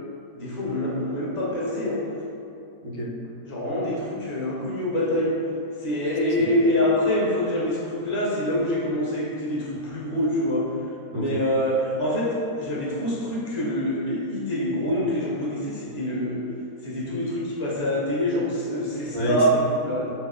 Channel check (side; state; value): left; late; 13 ms